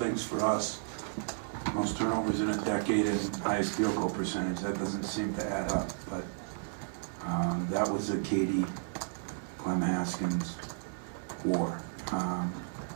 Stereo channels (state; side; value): silent; left; digital silence